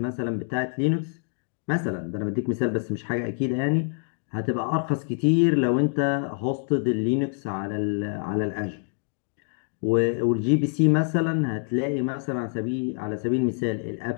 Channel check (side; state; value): right; silent; 56 dB below the other